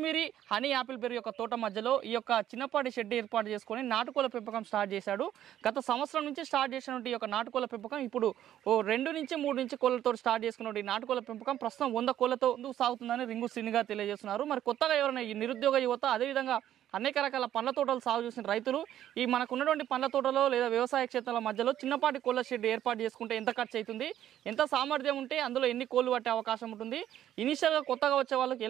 హనీ యాపిల్ బెర్రీ యొక్క తోట మధ్యలో ఈ యొక్క చిన్నపాటి షెడ్ ఏర్పాటు చేసుకొని నాటుకోళ్ళ పెంపకం స్టార్ట్ చేశాడు. గత సంవత్సరం నుంచి స్టార్ట్ చేసినటువంటి ఈ యొక్క నాటుకోళ్ళ పెంపకం ఇప్పుడు 2 నుంచి 3 నుంచి కోళ్ళతో స్టార్ట్ చేసుకున్నటువంటి నాటుకోళ్ళ పెంపకం ప్రస్తుతం 100 కోళ్ళతో సాగుతుందని రింగు శ్రీని గారు తెలియజేస్తున్నారు. మరి కొత్తగా ఎవరైనా ఈ నిరుద్యోగ యువత, అదేవిధంగా అనేక రకాల పండ్ల తోటలు సాగు చేసిన రైతులు ఈ మనకున్నటువంటి పండ్ల తోటలో లేదా వ్యవసాయ క్షేత్రాల మధ్యలో చిన్నపాటి కోళ్ళ షెడ్ ఏర్పాటు చేసుకుంటే ఎంత ఖర్చు అవుతుంది, ఎంత సామర్థ్యం ఉంటే అందులో ఎన్ని కోళ్ళు పట్టే అవకాశం ఉంటుంది, ఇనిషియల్గా కొత్తగా వచ్చే వాళ్ళకి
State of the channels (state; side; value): quieter; left; 11.6 dB